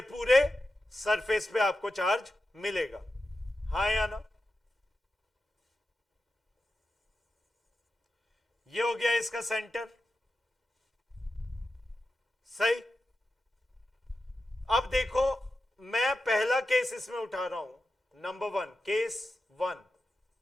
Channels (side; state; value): both; normal; correlation 0.91